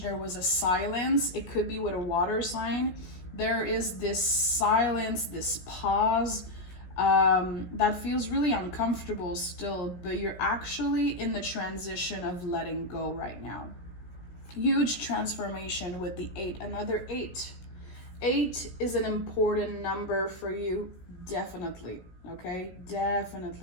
was a silence. It could be with a water sign. There is this silence, this pause that feels really uncomfortable still, but you're actually in the transition of letting go right now. Huge transformation with the 8, another 8. 8 is an important number for you, definitely, okay?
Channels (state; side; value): late; right; 17 ms